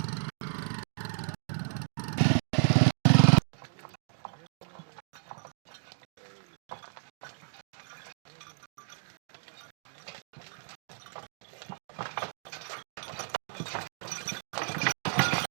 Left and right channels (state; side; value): silent; left; 56 dB below the other